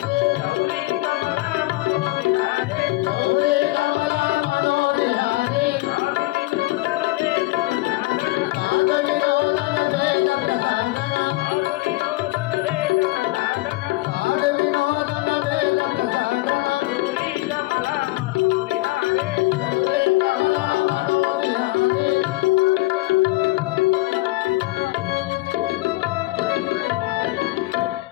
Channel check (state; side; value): quieter; right; 19.9 dB